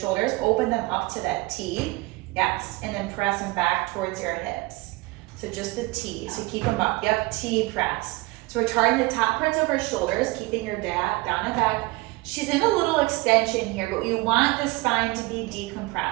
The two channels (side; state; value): left; quieter; 23.1 dB